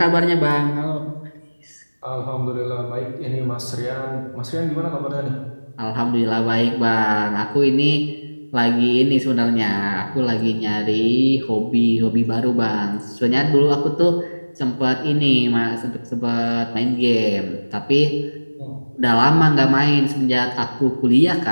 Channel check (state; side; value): inverted; both; correlation -1.00